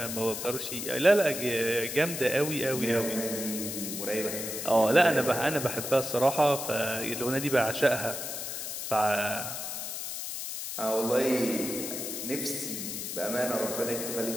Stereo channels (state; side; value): noise; left; hiss, 5 dB below the sound